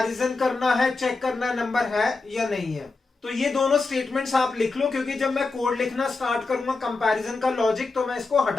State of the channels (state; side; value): quieter; right; 3.8 dB